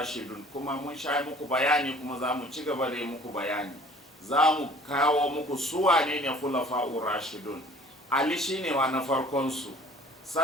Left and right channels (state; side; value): normal; both; correlation 0.50